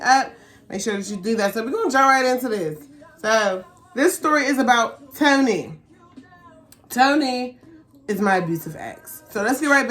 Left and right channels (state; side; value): identical; both; correlation 1.00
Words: up. Make sure that you do that. So we're going to jump right into this. So this story is about Tony. Tony is my abusive ex. So let's get right